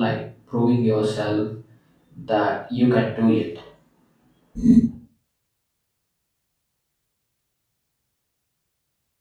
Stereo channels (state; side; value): identical; both; correlation 1.00